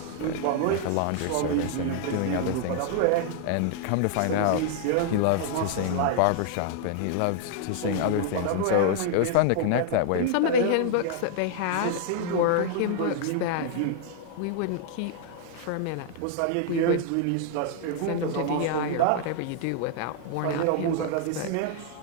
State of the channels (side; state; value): both; different; correlation 0.00